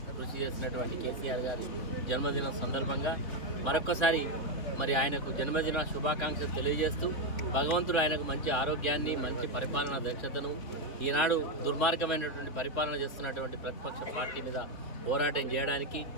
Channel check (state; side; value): late; right; 3.7 ms